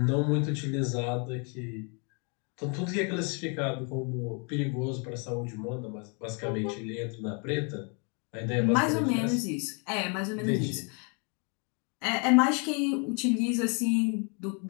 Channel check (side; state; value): right; quieter; 36.1 dB